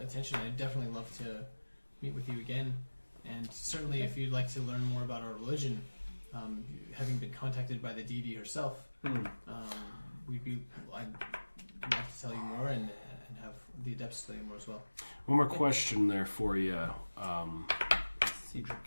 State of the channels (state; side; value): inverted; both; correlation -1.00